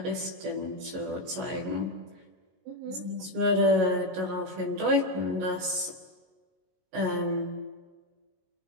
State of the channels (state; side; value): late; left; 22 ms